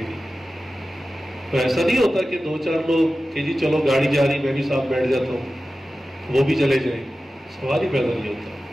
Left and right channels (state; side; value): normal; both; correlation 0.94